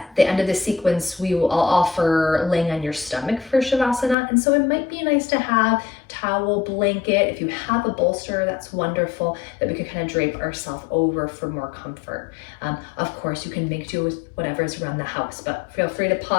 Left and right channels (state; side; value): drops out; right; at 4.2 s